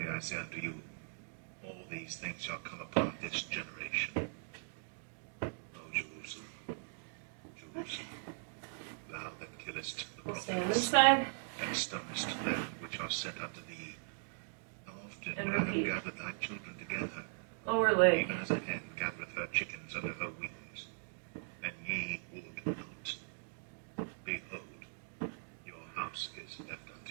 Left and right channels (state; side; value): silent; left; digital silence